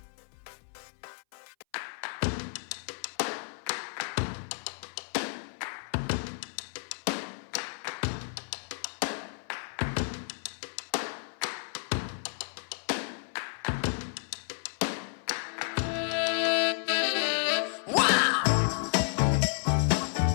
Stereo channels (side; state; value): right; silent; 57 dB below the other